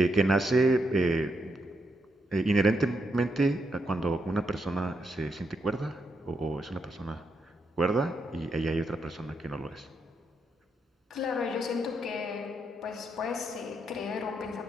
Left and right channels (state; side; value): normal; both; correlation 0.80